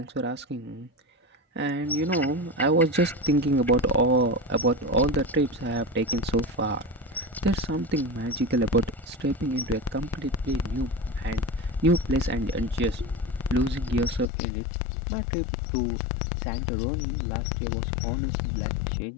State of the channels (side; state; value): right; drops out; at 14.3 s